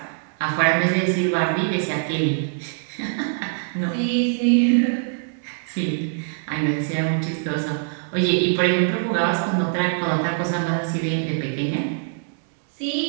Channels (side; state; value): left; silent; digital silence